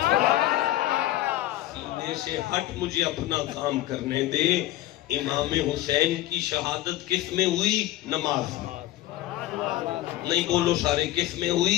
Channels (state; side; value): quieter; right; 15.2 dB